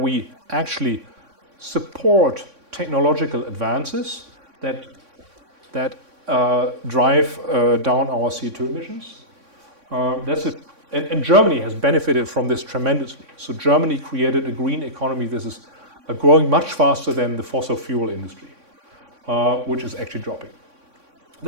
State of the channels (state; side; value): late; left; 3.6 ms